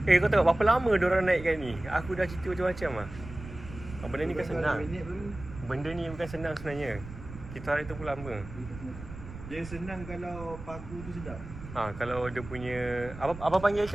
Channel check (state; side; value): noise; right; rumble, 13 dB below the sound